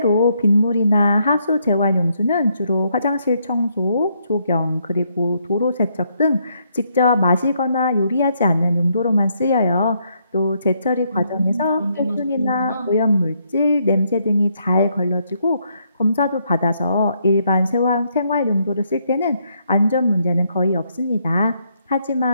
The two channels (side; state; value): both; inverted; correlation -0.74